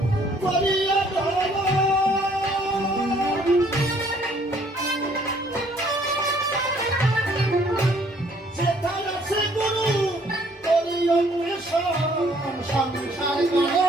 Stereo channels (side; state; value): both; normal; correlation 0.62